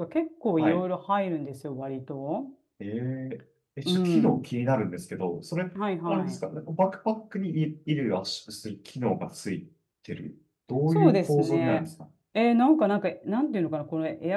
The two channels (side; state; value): both; identical; correlation 1.00